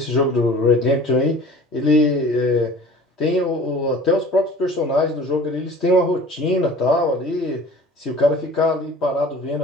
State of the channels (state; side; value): normal; both; correlation 0.44